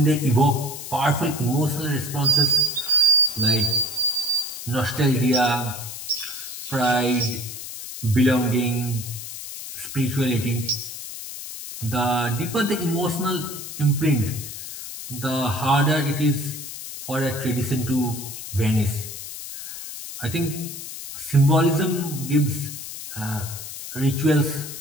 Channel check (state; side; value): noise; left; hiss, 10 dB below the sound